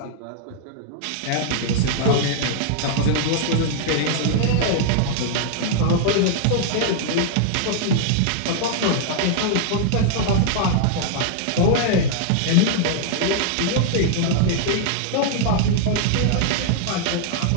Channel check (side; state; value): both; different; correlation -0.01